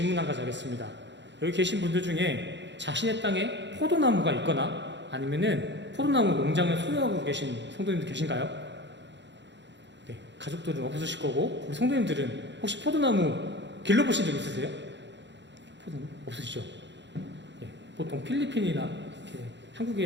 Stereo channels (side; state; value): left; late; 0.52 ms